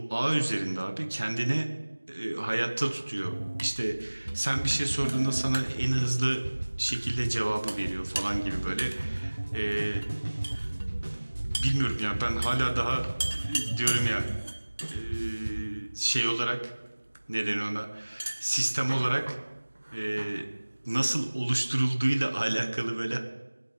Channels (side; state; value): both; inverted; correlation -1.00